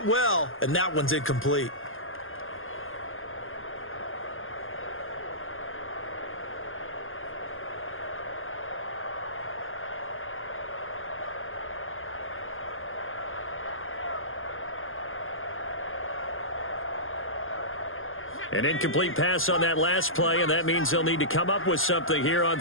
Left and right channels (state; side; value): late; right; 0.59 ms